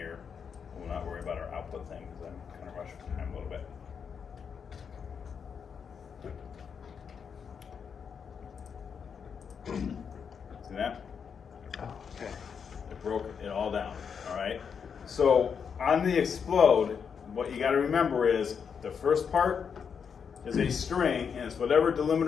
We'll not worry about our output thing because I'm kind of rushing for time a little bit. See that? Oh, okay. broke it all down, all right? So on the explode, what you gotta remember is the first part is a string, and it's whatever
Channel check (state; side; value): quieter; right; 6.7 dB